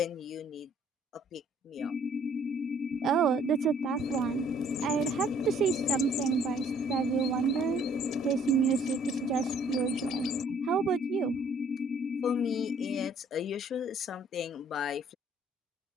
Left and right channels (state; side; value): normal; both; correlation 0.60